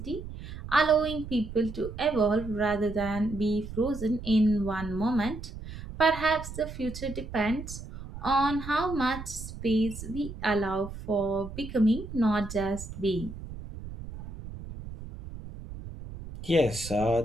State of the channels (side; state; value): right; noise; rumble, 11 dB below the sound